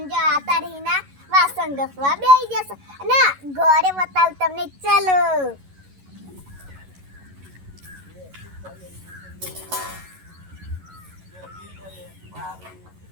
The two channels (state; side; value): late; left; 11 ms